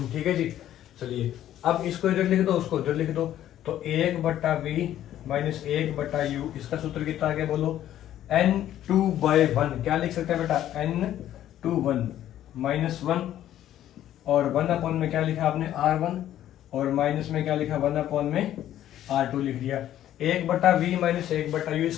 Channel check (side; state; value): right; quieter; 12.1 dB